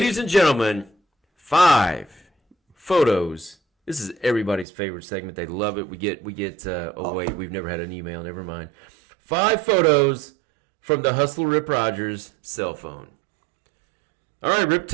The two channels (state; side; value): drops out; left; at 4.7 s